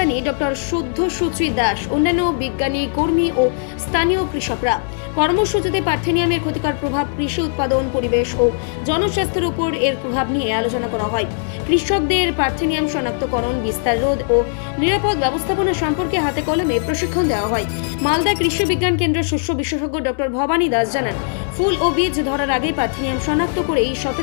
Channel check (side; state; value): right; silent; digital silence